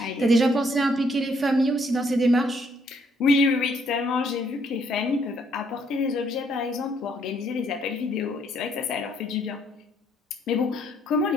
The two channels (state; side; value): normal; both; correlation 0.68